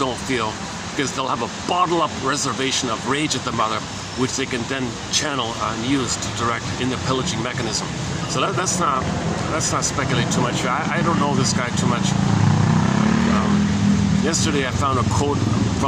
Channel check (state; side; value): identical; both; correlation 1.00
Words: feel, because they'll have a bottle-up reservation of rage at the mother, which they can then channel and use to direct in the pillaging mechanism. So let's not speculate too much here. I don't know this guy too much. Yesterday I found a quote